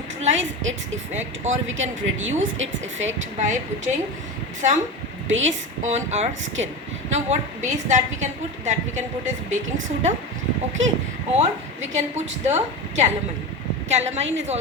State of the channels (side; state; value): both; normal; correlation 0.24